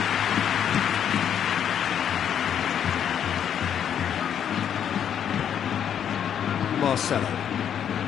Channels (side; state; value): right; quieter; 9.0 dB